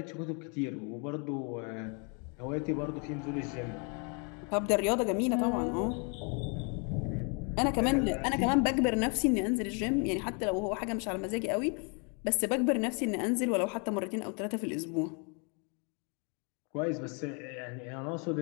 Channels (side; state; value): right; quieter; 36.1 dB